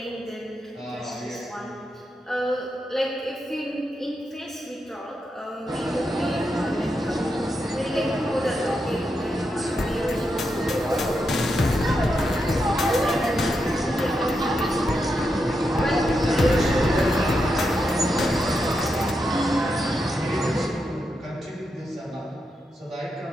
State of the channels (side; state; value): both; normal; correlation 0.85